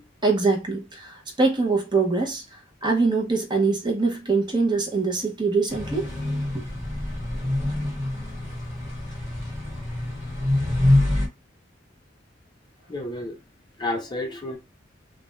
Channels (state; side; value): normal; both; correlation 0.74